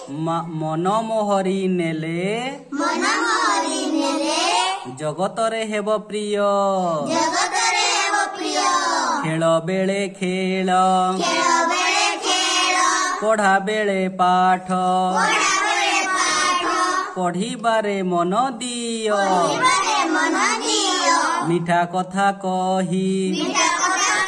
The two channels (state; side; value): identical; both; correlation 1.00